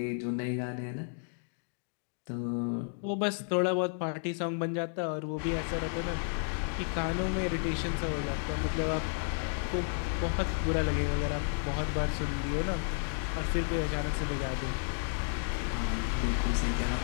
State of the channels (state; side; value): silent; right; 56 dB below the other